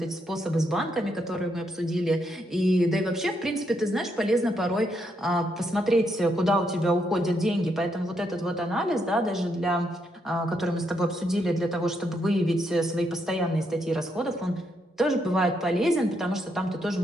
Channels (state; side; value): normal; both; correlation 0.78